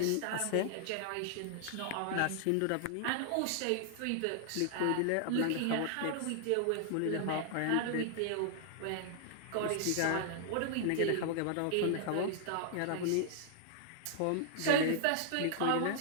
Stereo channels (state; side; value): different; both; correlation -0.01